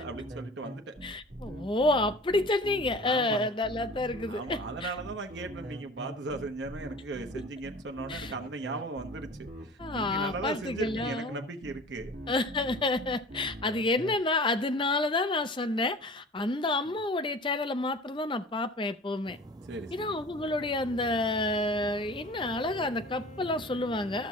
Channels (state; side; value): normal; both; correlation 0.41